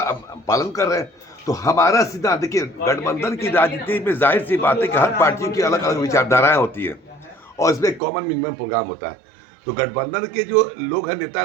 पालन कर रहे हैं। तो हमारा सिद्धांत देखिए, गठबंधन की राजनीति में जाहिर सी बात है कि हर पार्टी की अलग अलग विचारधाराएं होती हैं और इसमें कॉमन मिनिमम प्रोग्राम होता है। तो गठबंधन के जो लोग हैं, नेता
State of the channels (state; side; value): drops out; left; at 8.0 s